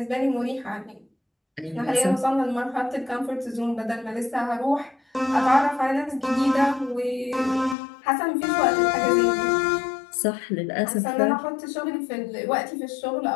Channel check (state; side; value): drops out; right; at 7.8 s